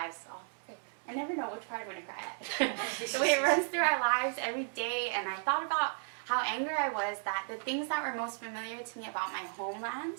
Oh, I never know which part I'm going to cry at. The way it runs through our lives every day, and I thought about how angry I was that the things that were most familiar to me about my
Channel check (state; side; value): silent; left; 55 dB below the other